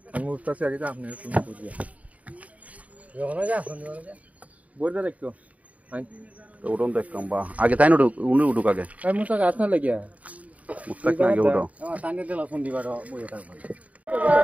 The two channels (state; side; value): late; left; 0.069 ms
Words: আমি উঠতাছি আগে তো আপনি তুমি বুঝিয়া যখন যা শুনি বলতে দেখতো তো উঠুন তো একদম বা আগে তাই না উঠুক আগে এই মুসা গাছ না লাগিয়া মুস্তাক না আগে উঠো টানে দিলা ফোন দিবার বইয়া থাকবে